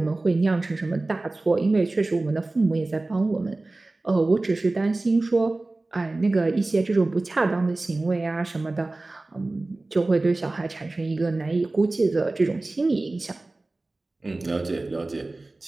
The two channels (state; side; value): quieter; left; 3.0 dB